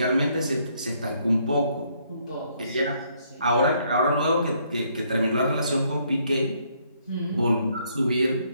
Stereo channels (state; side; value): inverted; both; correlation -0.69